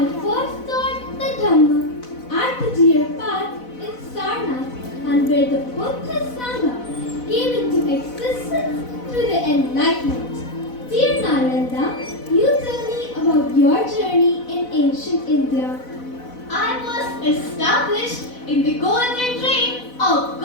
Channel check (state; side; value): late; right; 4.0 ms